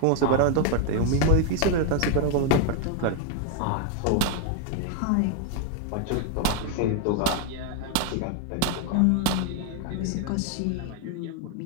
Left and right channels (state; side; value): different; both; correlation 0.01